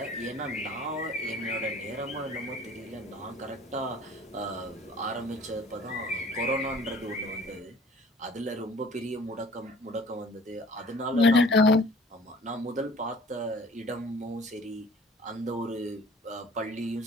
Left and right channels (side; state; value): both; normal; correlation 0.50